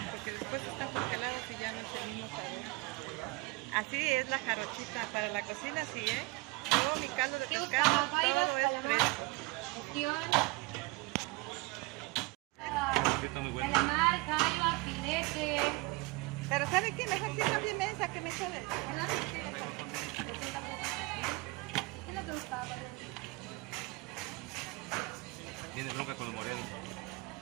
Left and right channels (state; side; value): quieter; left; 24.0 dB